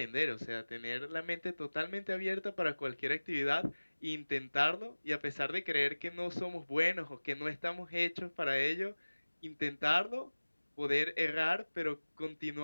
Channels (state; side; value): inverted; both; correlation -1.00